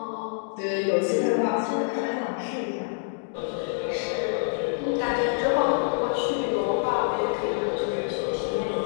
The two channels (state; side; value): silent; right; digital silence